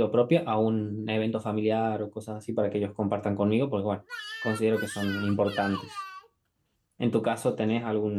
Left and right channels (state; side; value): identical; both; correlation 1.00